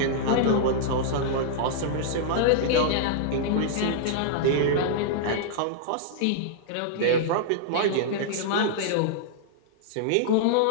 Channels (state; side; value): different; both; correlation -0.01